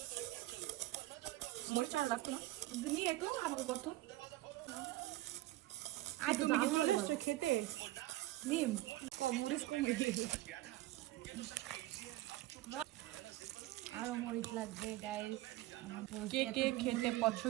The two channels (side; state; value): left; quieter; 17.2 dB